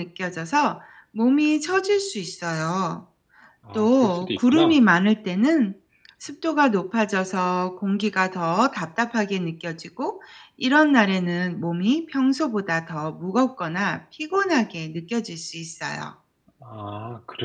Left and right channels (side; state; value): both; identical; correlation 1.00